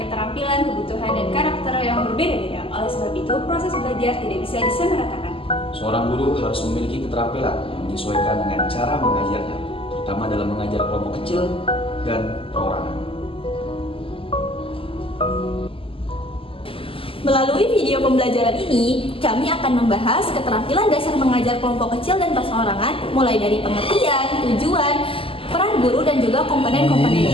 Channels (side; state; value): right; late; 0.26 ms